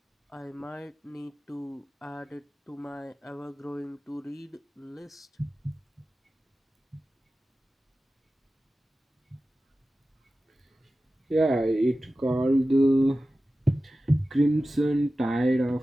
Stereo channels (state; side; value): normal; both; correlation 0.95